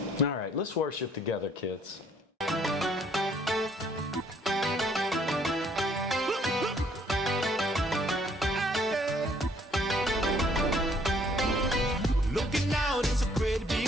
All right, let's worship together, kids. Looking out, it's a great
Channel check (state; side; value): normal; both; correlation 0.63